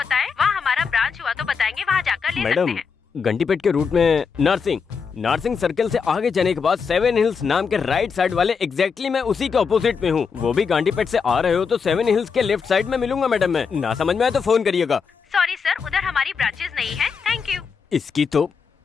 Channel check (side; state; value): right; quieter; 5.8 dB